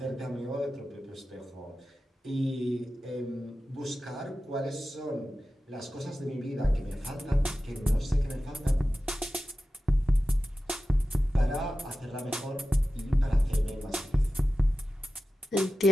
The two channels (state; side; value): normal; both; correlation 0.94